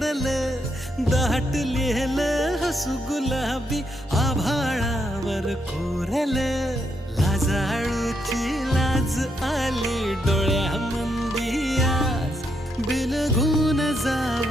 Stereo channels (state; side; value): normal; both; correlation 0.78